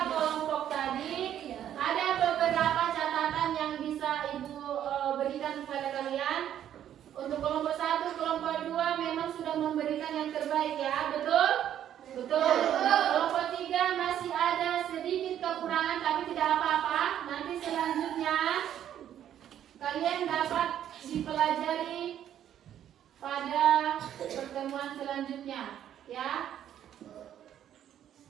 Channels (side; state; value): left; quieter; 10.6 dB